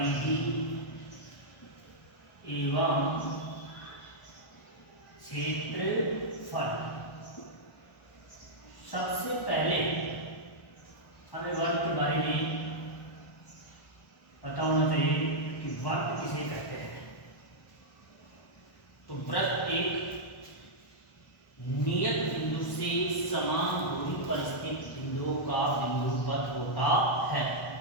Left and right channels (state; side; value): late; right; 1.2 ms